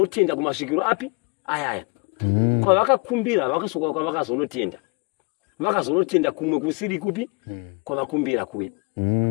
kumasvikiro api ayaya. Kwavakakumbira vakasoka kwavakazonotenda. Vakazonotenda kumwe kusiri kupi kwavakumbira kuya.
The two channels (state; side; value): quieter; right; 30.1 dB